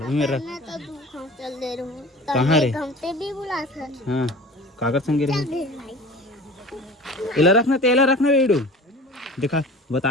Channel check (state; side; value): normal; both; correlation 0.40